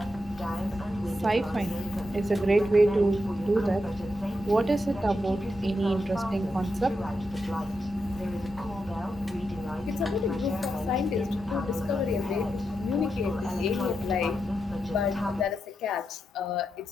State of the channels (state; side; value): normal; both; correlation 0.85